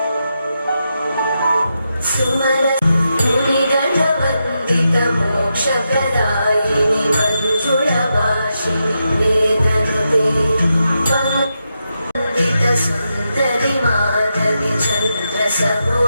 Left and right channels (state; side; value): inverted; both; correlation -0.86